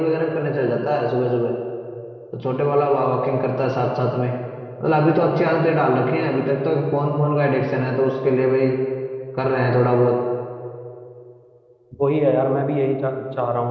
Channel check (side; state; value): both; identical; correlation 1.00